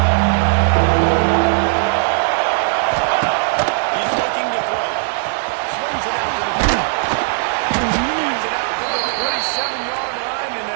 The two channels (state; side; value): silent; left; 67 dB below the other